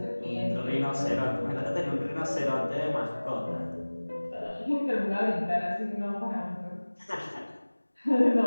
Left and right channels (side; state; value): both; inverted; correlation -1.00